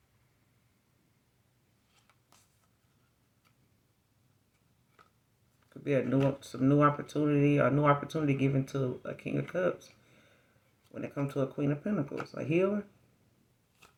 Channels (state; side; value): identical; both; correlation 1.00